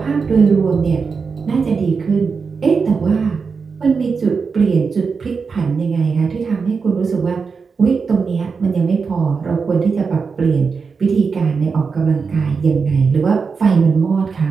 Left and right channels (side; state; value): left; quieter; 5.2 dB